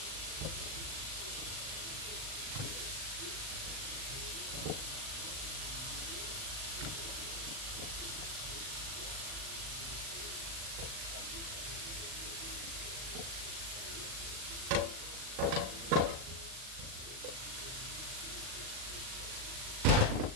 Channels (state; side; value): late; left; 39 ms